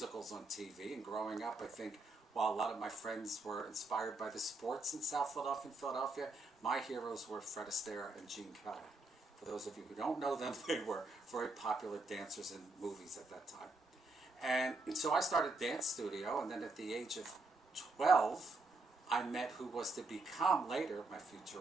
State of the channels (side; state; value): left; quieter; 3.2 dB